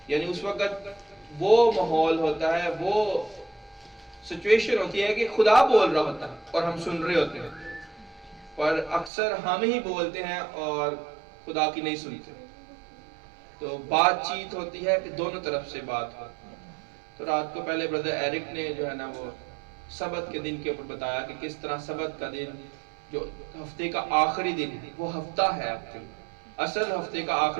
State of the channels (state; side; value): drops out; left; at 9.1 s